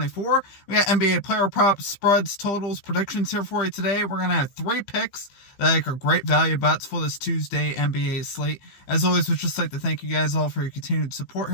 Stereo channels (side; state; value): right; late; 15 ms